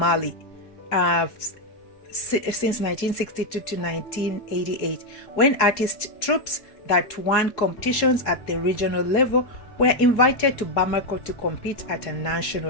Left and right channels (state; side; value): late; right; 3.7 ms